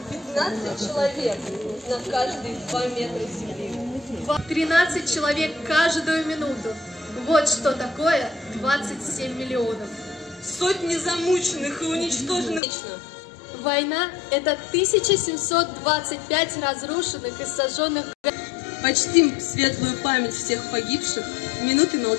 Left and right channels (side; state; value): right; drops out; at 12.6 s